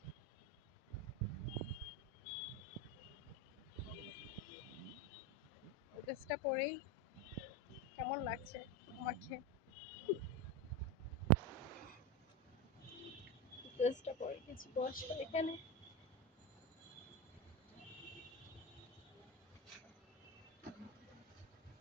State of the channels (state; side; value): normal; both; correlation 0.17